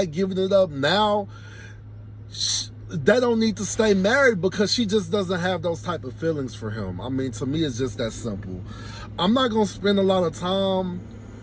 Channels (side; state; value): both; identical; correlation 1.00